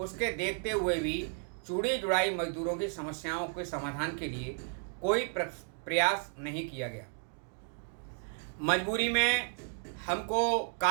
देखते हुए भी चूड़ी जुड़ाई मजदूरों की समस्याओं के समाधान के लिए कोई प्रयास नहीं किया गया। मजबूरी में हमको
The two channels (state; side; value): silent; left; 56 dB below the other